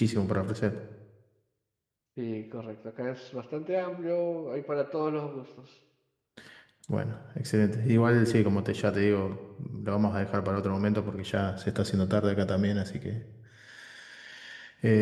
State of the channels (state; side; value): identical; both; correlation 1.00